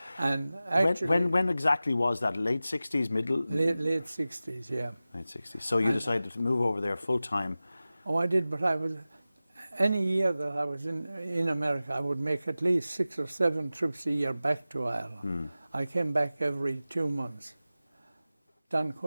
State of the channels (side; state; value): both; inverted; correlation -0.96